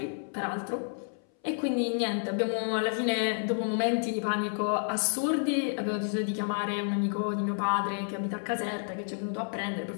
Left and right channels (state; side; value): silent; right; 58 dB below the other